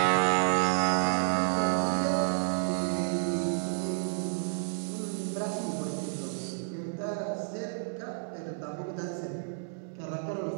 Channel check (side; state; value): left; silent; digital silence